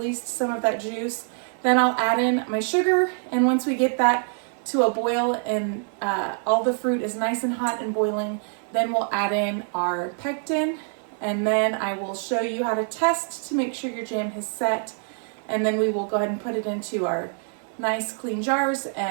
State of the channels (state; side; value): silent; left; 62 dB below the other